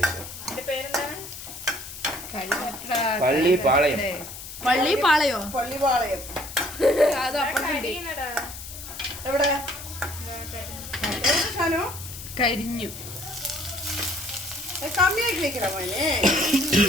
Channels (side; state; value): left; noise; hiss, 12 dB below the sound